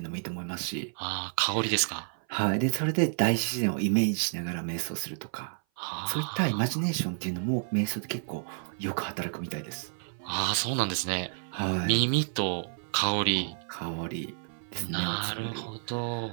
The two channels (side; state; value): left; silent; 56 dB below the other